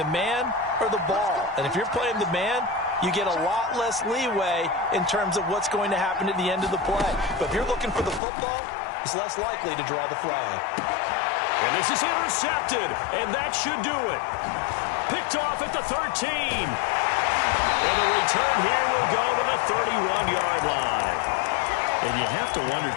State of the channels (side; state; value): right; drops out; at 8.2 s